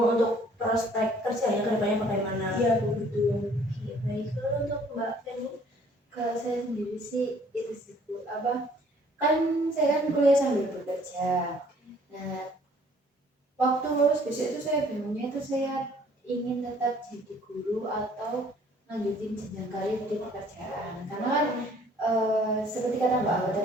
untuk prospek kerjanya ke depannya bagaimana. Iya Bu, betul. Oke, baik. Lalu untuk Mbak Feni? Kalau saya sendiri sih itu sih Bu, kan saya kan kuliah sambil bekerja. Nah, waktu lulus besok itu saya bingungnya itu saya ingin tetap jadi guru atau lanjutin jenjang karir di pekerjaan. Karena kan seperti kata Mbak Awa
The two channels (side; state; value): both; normal; correlation 0.58